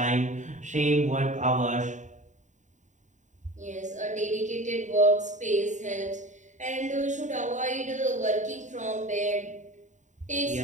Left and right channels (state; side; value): late; left; 0.35 ms